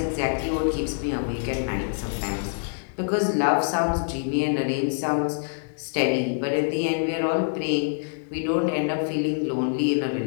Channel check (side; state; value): right; silent; digital silence